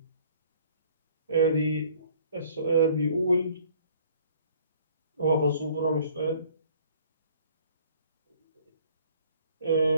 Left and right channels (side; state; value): both; inverted; correlation -0.56